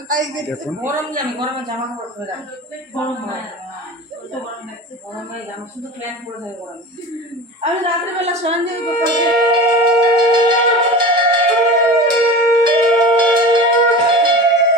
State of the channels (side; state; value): both; normal; correlation 0.33